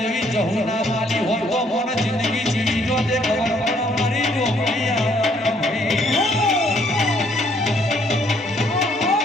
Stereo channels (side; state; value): both; normal; correlation 0.66